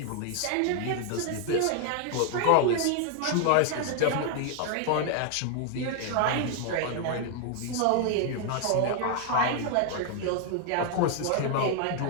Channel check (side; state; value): both; different; correlation 0.00